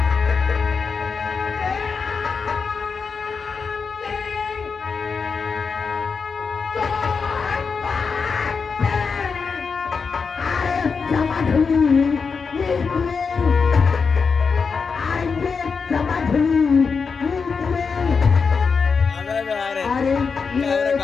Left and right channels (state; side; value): quieter; right; 5.3 dB